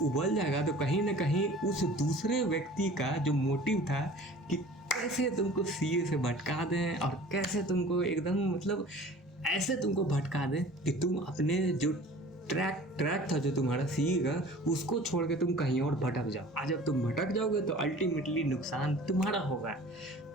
उबल जाएगा तो कहीं ना कहीं उस दूसरे व्यक्ति का जो मोटिव था कि कैसे तुमको सीए से भटका दें और कैसे तुमको एकदम मतलब ऐसे तुमको भटका दें कि तुम अपने जो ट्रैक था जो तुम्हारा सीए का, उसको छोड़ के तुम कहीं और भटक जाओ। आज जब तुम भटक जाओगे तो अल्टीमेटली नुकसान तुम्हारा होगा।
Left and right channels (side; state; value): both; normal; correlation 0.45